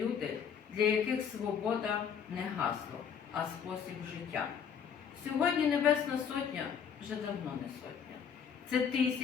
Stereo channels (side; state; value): right; quieter; 7.4 dB